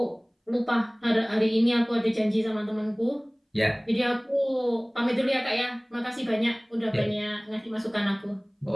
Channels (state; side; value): identical; both; correlation 1.00